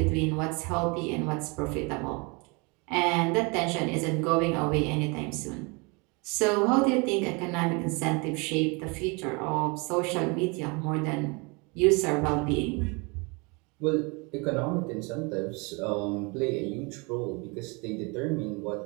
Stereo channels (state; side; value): quieter; left; 29.6 dB